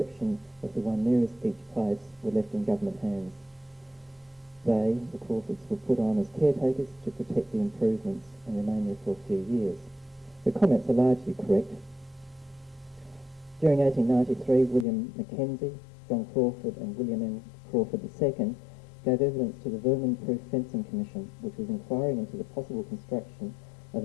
of the one nearest each place, were left in government hands. They, the Crawfords, were put on as caretakers to protect the improvements and remain there for a few years." The comments are largely correct. During 1893, William Mackenzie, John Crawford and William M. Crawford II gave evidence to the Vermin-Proof Fencing Commission, which was inquiring into the possible construction of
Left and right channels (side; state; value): right; drops out; at 14.9 s